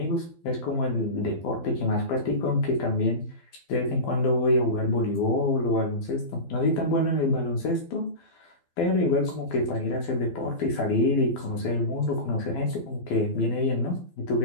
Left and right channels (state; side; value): late; right; 12 ms